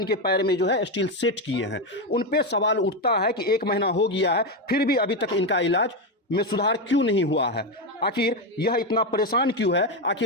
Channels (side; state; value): both; normal; correlation 0.10